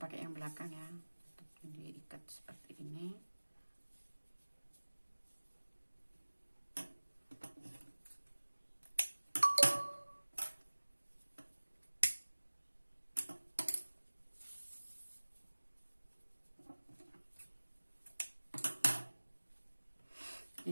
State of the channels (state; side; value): inverted; both; correlation -1.00